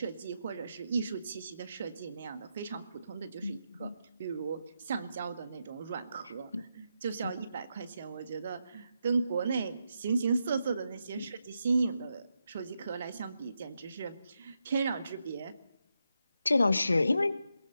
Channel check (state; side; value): inverted; both; correlation -0.85